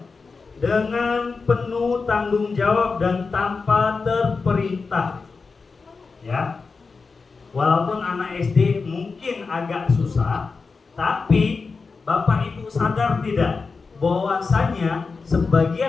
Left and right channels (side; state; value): right; quieter; 4.5 dB